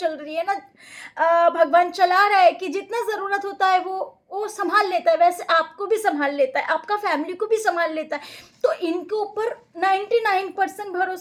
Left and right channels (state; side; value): identical; both; correlation 1.00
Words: रही है ना, भगवान चला रहा है कि जितना जरूरत होता है वो संभाल लेता है, वैसे आपको भी संभाल लेता है, आपका फैमिली को भी संभाल लेता है। तो इनके ऊपर 99%